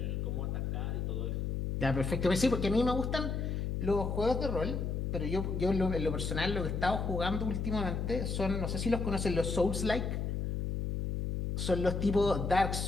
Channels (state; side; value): noise; left; hum, 1 dB below the sound